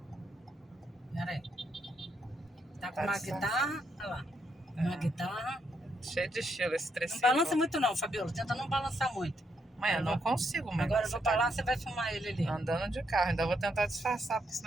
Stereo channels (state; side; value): normal; both; correlation 0.78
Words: Pera aí. Tá com uma guitarra. Olha lá. Uma guitarra. Cheio de estilo esse trecinho. Não balança muito não, Fabiola. Tenta não balançar muito. Mãe, eu não consigo, mãe. Agora eu vou pra lá, você vai filmar ele ali. Andando de carro. Ainda vou tentar disfarçar, porque